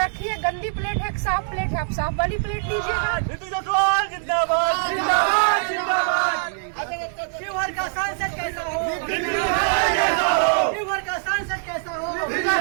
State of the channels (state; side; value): silent; left; digital silence